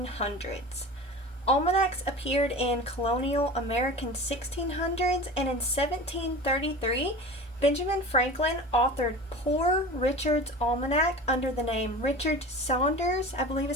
Almanacs appeared in colonial American 1600s, and in 1733, Benjamin Franklin authored Poor Richard's Almanac under the name Richard Saunders, I believe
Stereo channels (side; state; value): both; normal; correlation 0.34